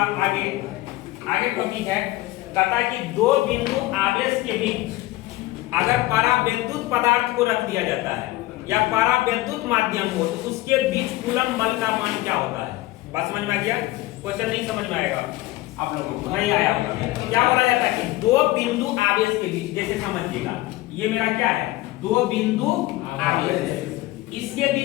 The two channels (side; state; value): right; quieter; 18.1 dB